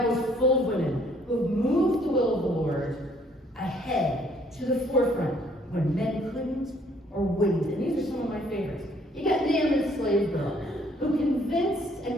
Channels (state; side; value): normal; both; correlation 0.63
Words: is full of women who have moved the will of the Lord ahead to the forefront when men couldn't or wouldn't. And these are some of my favorites. You got Naaman's slave girl, who convinced a